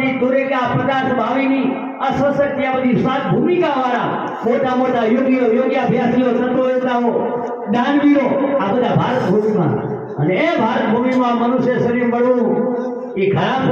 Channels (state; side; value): identical; both; correlation 1.00